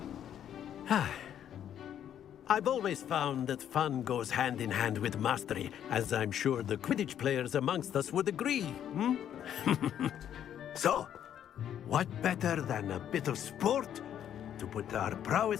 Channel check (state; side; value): quieter; right; 10.0 dB